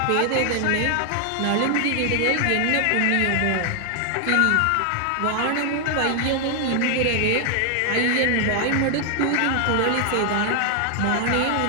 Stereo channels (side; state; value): both; different; correlation 0.00